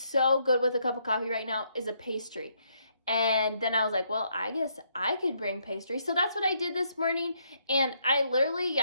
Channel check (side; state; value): both; inverted; correlation -0.73